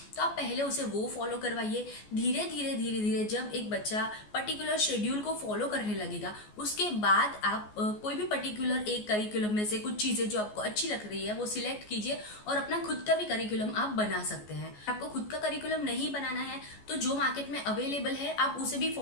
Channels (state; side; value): late; right; 14 ms